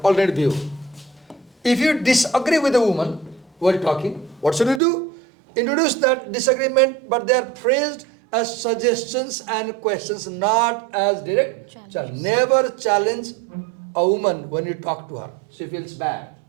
alternative view. If you disagree with a woman while talking, what should you do? Introduce that disagreement, but they are phrased as suggestions and questions, not as direct challenge. Never challenge a woman when you talk to her. She feels bad.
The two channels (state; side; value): drops out; left; at 4.8 s